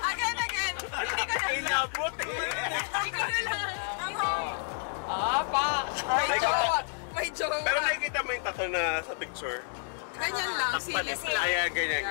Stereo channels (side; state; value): right; silent; 58 dB below the other